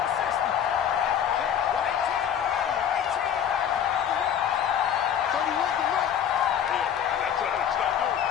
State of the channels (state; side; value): quieter; right; 9.0 dB